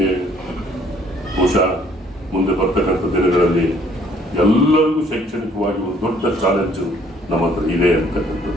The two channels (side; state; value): both; normal; correlation 0.62